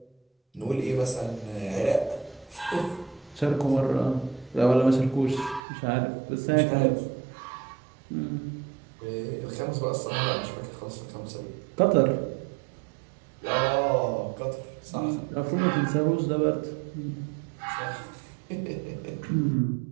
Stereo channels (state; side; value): drops out; left; at 5.6 s